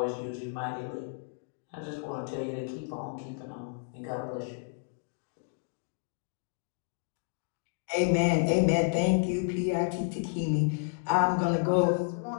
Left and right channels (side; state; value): right; silent; digital silence